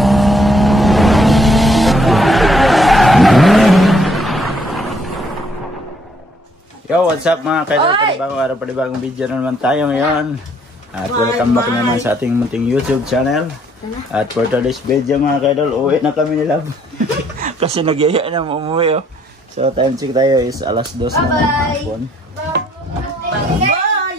Yo, what's up mga kaidol? Panibagong araw, panibagong video na naman tayo ngayon. At welcome back naman sa ating munting YouTube channel. At for today's video mga kaidol, uwi na kami nila. Kasi nagyaya na umuwi oh. So time check tayo is alas 2 na ng hapon.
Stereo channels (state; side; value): normal; both; correlation 0.67